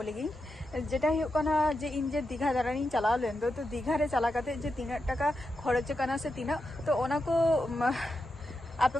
लगी जेटा हुयुक कना जे इन जे दीघा दारानी चलाव लेन तो दीघा रे चला काते जे 3 टाका खर्च कना से 3 तो ओना को आपे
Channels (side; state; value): both; normal; correlation 0.87